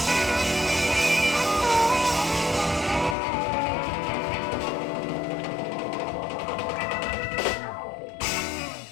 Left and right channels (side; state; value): right; drops out; at 3.2 s